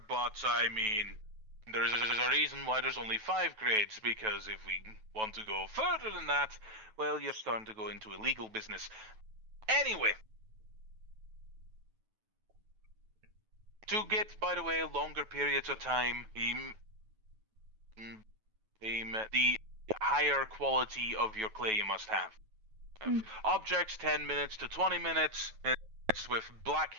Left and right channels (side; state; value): left; late; 9.2 ms